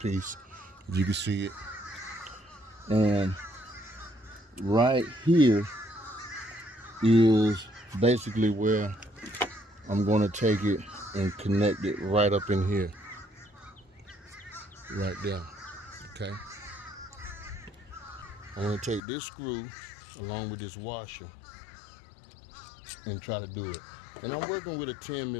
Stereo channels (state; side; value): drops out; right; at 19.0 s